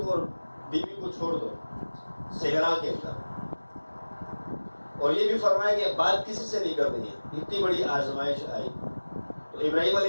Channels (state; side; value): inverted; both; correlation -1.00